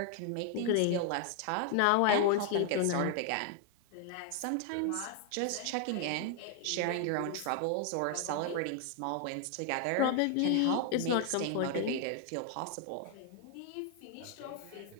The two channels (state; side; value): different; both; correlation 0.00